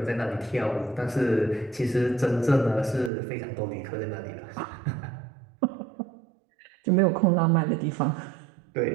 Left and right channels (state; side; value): drops out; left; at 3.1 s